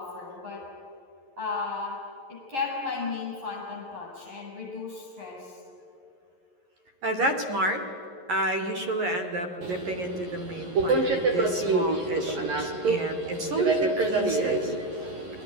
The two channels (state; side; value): late; left; 11 ms